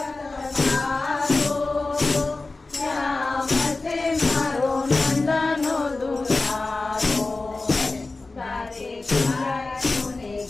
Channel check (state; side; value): quieter; right; 3.4 dB